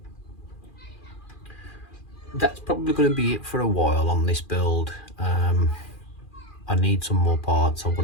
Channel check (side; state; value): right; late; 2.4 ms